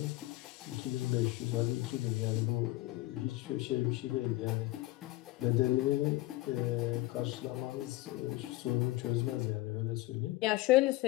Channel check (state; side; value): quieter; right; 18.7 dB